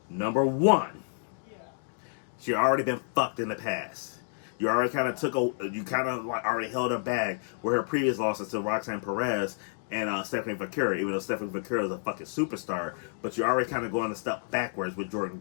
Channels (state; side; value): silent; right; digital silence